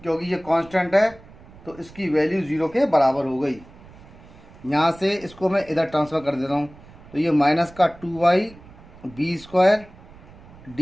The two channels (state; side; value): noise; right; rumble, 21 dB below the sound